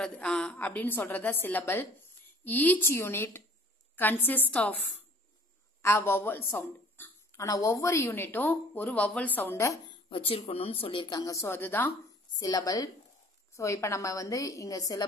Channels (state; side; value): normal; both; correlation 0.52